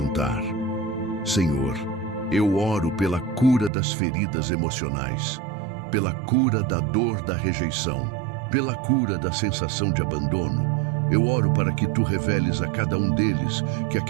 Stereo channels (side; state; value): left; drops out; at 3.7 s